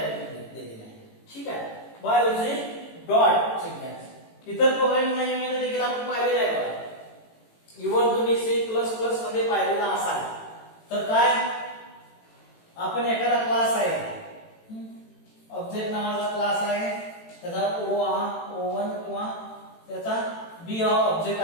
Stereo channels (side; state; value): right; late; 18 ms